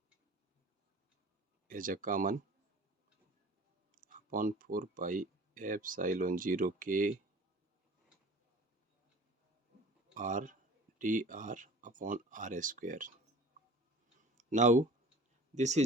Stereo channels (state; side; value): normal; both; correlation 0.43